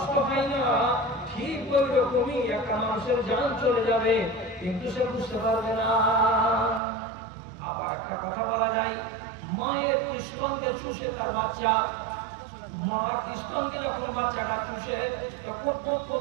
হয় না। ঠিক ওই রকমই একটা মানুষের জান চলে যাবে, কিন্তু সে বুঝতে পারবে না। আবার একটা কথা বলা যায়, মায়ের স্তনকে চুষে তার বাচ্চা, মার স্তনকে যখন বাচ্চাটা চুষে, তখন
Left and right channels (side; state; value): left; drops out; at 6.8 s